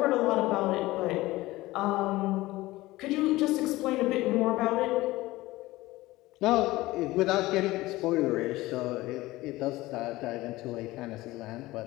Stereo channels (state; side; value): quieter; right; 18.6 dB